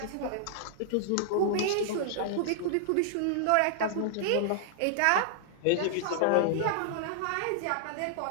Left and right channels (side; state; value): both; different; correlation -0.01